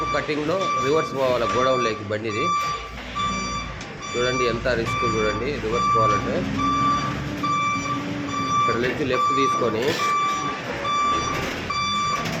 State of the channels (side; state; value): both; identical; correlation 1.00